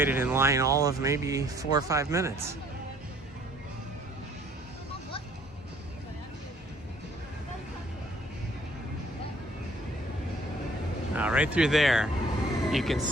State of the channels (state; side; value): normal; both; correlation 0.59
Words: in line all of maybe 4 or 5 minutes. Right through there, you can